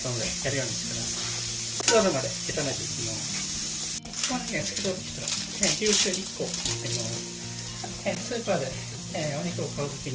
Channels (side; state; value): both; identical; correlation 1.00